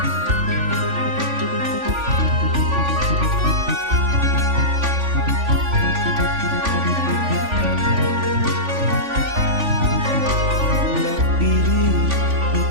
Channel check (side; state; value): left; late; 3.5 ms